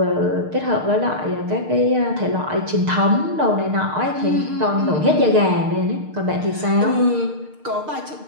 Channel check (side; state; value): left; late; 6.6 ms